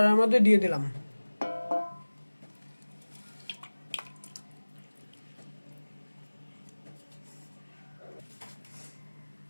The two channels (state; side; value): inverted; both; correlation -1.00